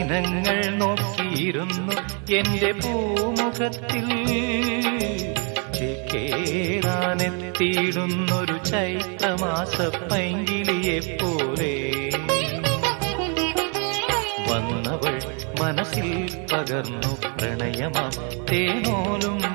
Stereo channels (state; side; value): quieter; left; 37.1 dB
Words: നോക്കിയിരുന്നു എന്റെ പൂമുഖത്തിൽ ചേക്കേറാനെത്തിയിടുന്നൊരു ചൈത്രമാസ പൈങ്കിളിയെപ്പോലെ വന്നവൾ മനസ്സിൽ പകർന്നു പ്രണയമാം തേനോലും